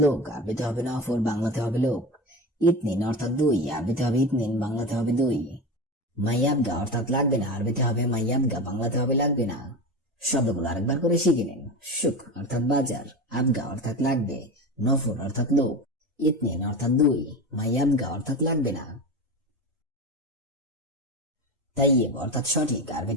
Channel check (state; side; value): normal; both; correlation 0.25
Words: লোক, আরবিতে হবে নফর, বাংলাতে হবে লোক। ইতনিন অর্থাৎ দুই, আরবিতে হবে ইতনিন, বাংলাতে হবে দুই। মাইয়াবগা অর্থাৎ লাগবে না, আরবিতে হবে মাইয়াবগা, বাংলাতে হবে লাগবে না। শব্দগুলো আরেকবার করে শিখে নিন। সুক অর্থাৎ বাজার, আবগা অর্থাৎ লাগবে, নফর অর্থাৎ লোক, ইতনিন অর্থাৎ দুই, মাইয়াবগা অর্থাৎ লাগবে না। তাইয়েব অর্থাৎ সঠিক,